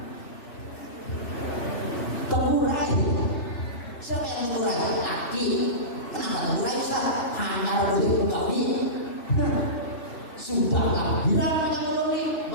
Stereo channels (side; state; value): right; late; 3.0 ms